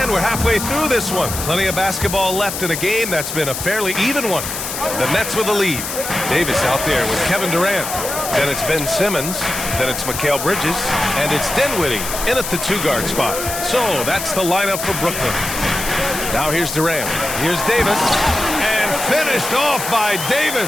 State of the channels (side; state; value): left; noise; hiss, 5 dB below the sound